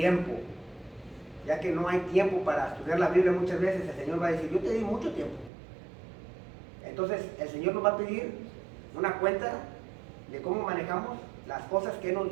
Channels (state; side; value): drops out; left; at 5.5 s